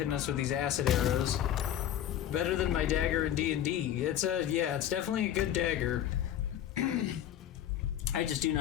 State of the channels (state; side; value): quieter; right; 10.9 dB